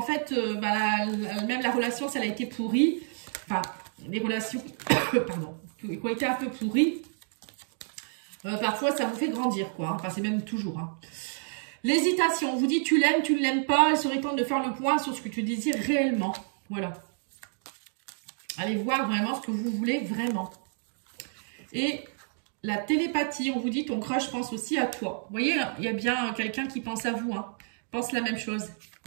fait, même la relation, ça a été pourrie. Enfin, les relations, pardon, qui ont été un peu pourries. Parfois, ça vous fait grandir, quoi. Enfin, c'est même toujours. Hein. L'hésitation, on vous dit tu l'aimes, tu ne l'aimes pas. Il serait temps de faire le point sur ce que tu désires réellement. Voilà. Allez voir vraiment ce que vous voulez vraiment. Et la télépathie, on vous dit ton crush pense aussi à toi. Vous voyez, il y a bien quelqu'un qui pense à vous. Hein. Pense la même chose.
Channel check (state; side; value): silent; left; digital silence